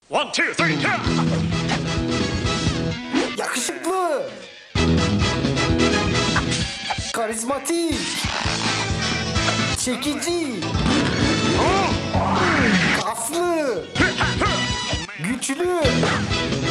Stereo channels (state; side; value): identical; both; correlation 1.00